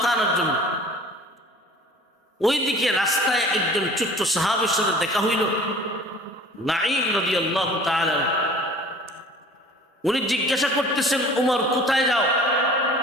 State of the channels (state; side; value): normal; both; correlation 0.46